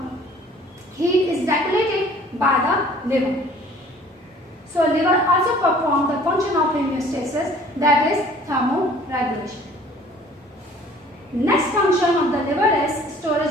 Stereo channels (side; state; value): both; normal; correlation 0.52